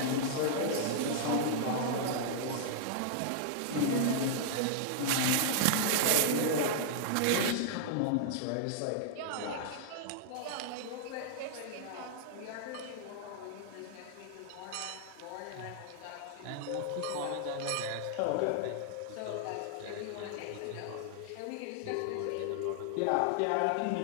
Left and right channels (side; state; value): both; different; correlation -0.01